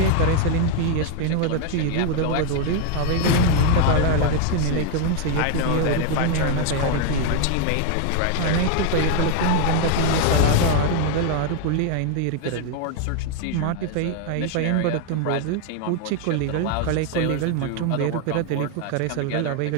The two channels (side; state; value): both; different; correlation 0.01